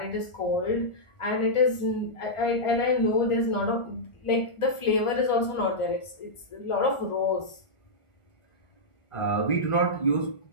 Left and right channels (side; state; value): right; late; 1.4 ms